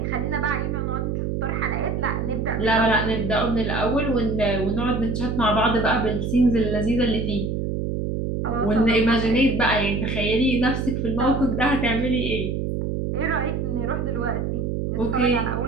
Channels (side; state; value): right; noise; hum, 1 dB below the sound